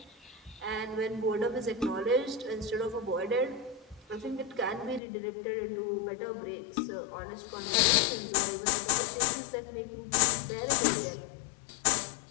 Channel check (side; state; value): right; drops out; at 5.0 s